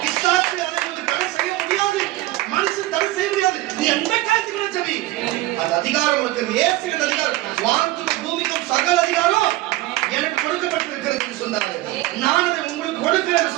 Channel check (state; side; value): quieter; left; 17.4 dB